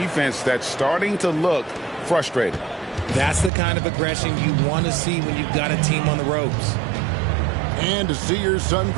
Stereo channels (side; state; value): left; drops out; at 3.5 s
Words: that's starting to look frustrated. That's the kind of aggression you want to see when you've got a team on the ropes. And to see your son